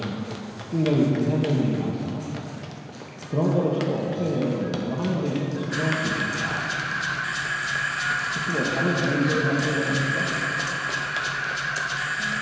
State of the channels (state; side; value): identical; both; correlation 1.00